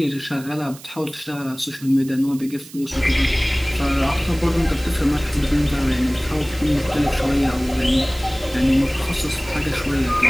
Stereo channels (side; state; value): right; noise; hiss, 18 dB below the sound